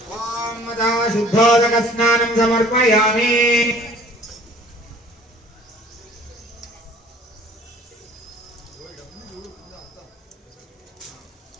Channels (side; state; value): both; normal; correlation 0.52